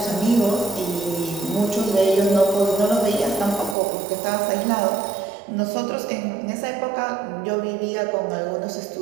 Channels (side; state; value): left; drops out; at 3.8 s